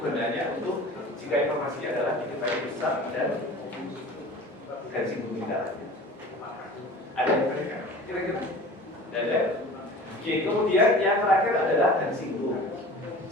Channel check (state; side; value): normal; both; correlation 0.41